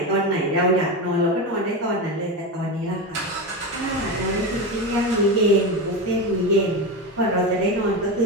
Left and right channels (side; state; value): both; normal; correlation 0.18